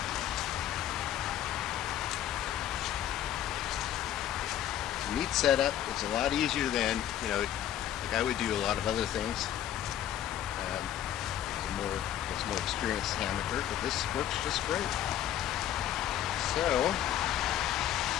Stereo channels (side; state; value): right; quieter; 11.4 dB